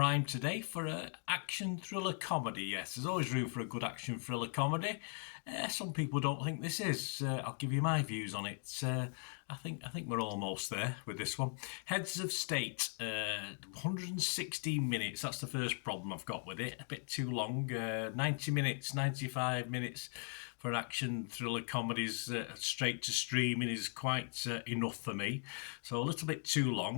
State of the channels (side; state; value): right; silent; 52 dB below the other